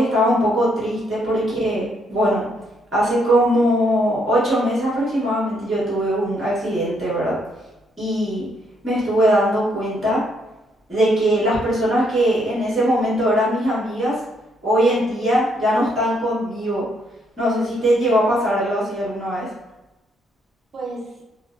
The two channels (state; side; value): normal; both; correlation 0.73